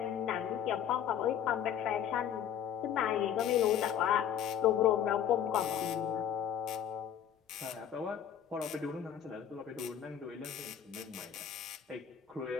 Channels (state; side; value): quieter; right; 9.4 dB